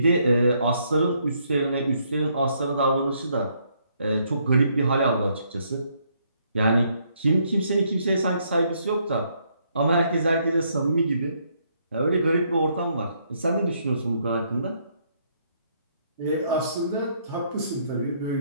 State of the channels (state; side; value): inverted; both; correlation -0.71